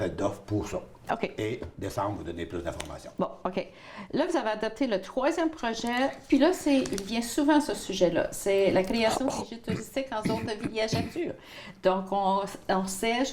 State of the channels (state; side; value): identical; both; correlation 1.00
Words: d'offres pour ça. OK. Et décembre, vous donner plus d'informations. Bon, OK. Là, vous avez adopté le 3e projet, puis là, il vient souvent ce sujet-là. C'est la création des guichets touristiques en zone de villégiature. Donc, on sait,